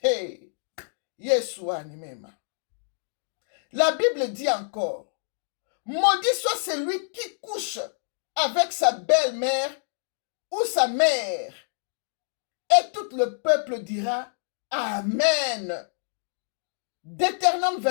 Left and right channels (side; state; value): right; silent; digital silence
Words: Hey, Yeshua Nimema. La Bible dit encore, maudit soit celui qui couche avec sa belle-mère ou sa mère. Et tout le peuple dira, Amen. Deutéronome